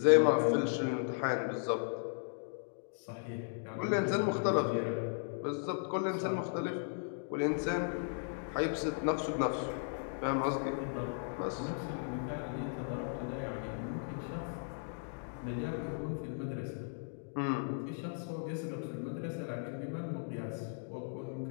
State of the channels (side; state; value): right; silent; digital silence